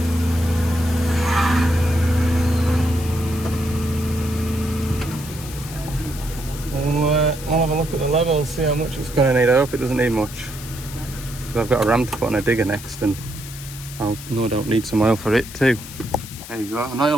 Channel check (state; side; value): noise; left; hiss, 14 dB below the sound